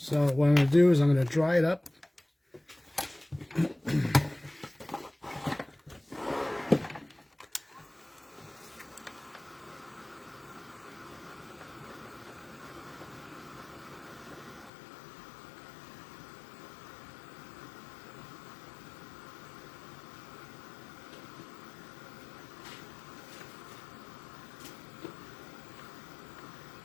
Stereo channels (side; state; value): right; drops out; at 14.7 s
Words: what I'm going to do is I'm going to dry it up.